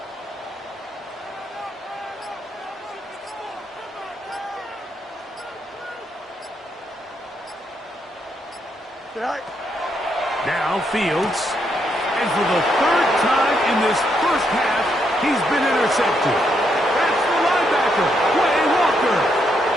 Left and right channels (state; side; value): normal; both; correlation 0.77